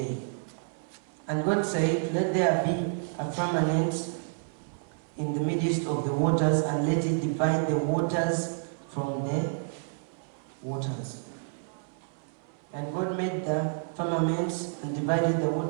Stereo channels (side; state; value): left; silent; 58 dB below the other